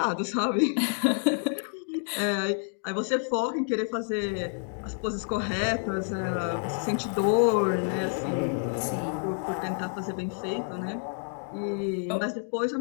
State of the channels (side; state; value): right; silent; 59 dB below the other